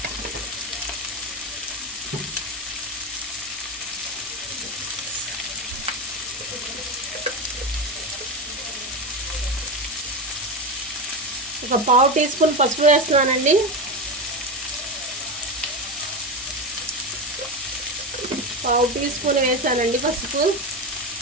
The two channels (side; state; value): both; normal; correlation 0.18